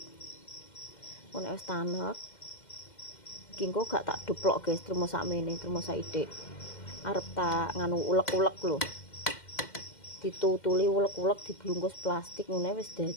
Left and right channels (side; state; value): right; late; 2.1 ms